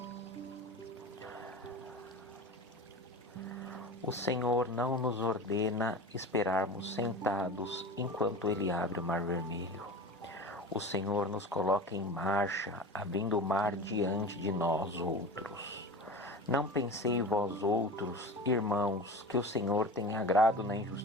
O Senhor não nos ordena esperarmos sentados enquanto Ele abre o mar vermelho. O Senhor nos coloca em marcha, abrindo o mar diante de nós outros. Não pensei vós outros, irmãos, que o Senhor tem agrado na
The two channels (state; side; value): normal; both; correlation 0.32